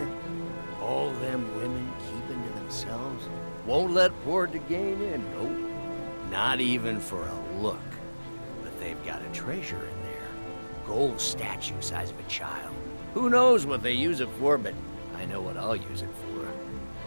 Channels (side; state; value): both; inverted; correlation -1.00